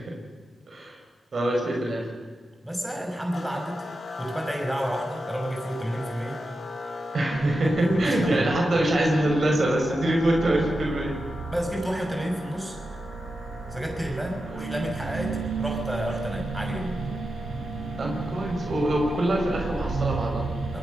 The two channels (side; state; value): both; normal; correlation 0.89